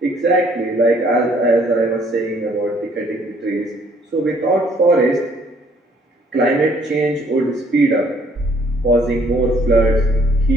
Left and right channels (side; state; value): both; normal; correlation 0.63